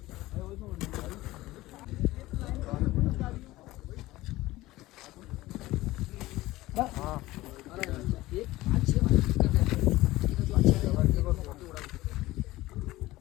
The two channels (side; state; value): right; quieter; 17.9 dB